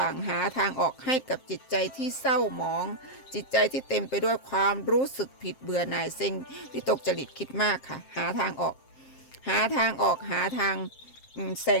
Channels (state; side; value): late; right; 7.6 ms